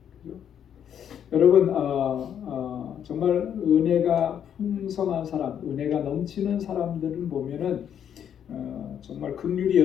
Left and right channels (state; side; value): quieter; right; 9.0 dB